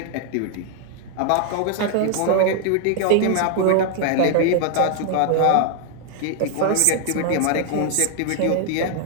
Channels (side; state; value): both; different; correlation 0.00